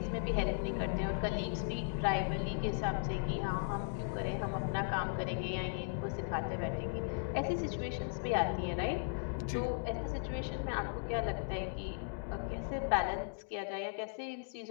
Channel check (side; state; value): right; silent; digital silence